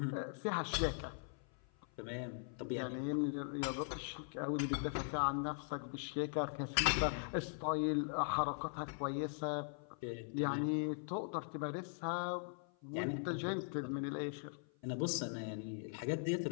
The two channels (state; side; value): silent; right; 51 dB below the other